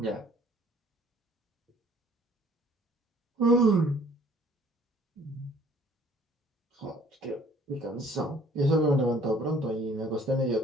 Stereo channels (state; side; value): normal; both; correlation 0.56